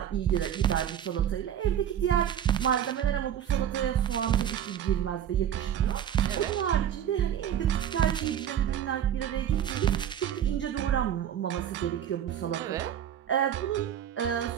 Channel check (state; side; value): quieter; left; 9.9 dB